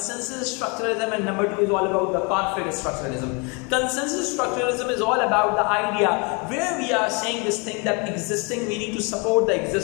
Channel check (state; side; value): quieter; right; 31.6 dB